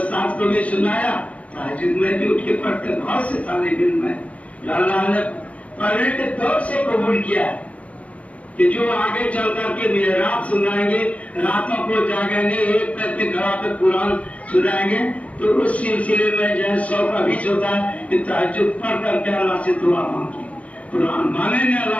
کو بھی سنایا، تہجد میں بھی اٹھ کے پڑھتے. بہت سے طالب علم میں اللہ نے پہلے کے دور سے قبول کیا ہے کہ جو آگے چل کر کے محراب سنائیں گے، راتوں کو جاگیں گے، ایک کر کے گھر پہ قرآن سنائیں گے. تو اس سلسلے میں جو 100 کا بیچ ہوتا ہے کہ تہجد پڑھ کر کے اللہ سے دعا مانگی، قرآن مانگیں گے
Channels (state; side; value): late; right; 0.066 ms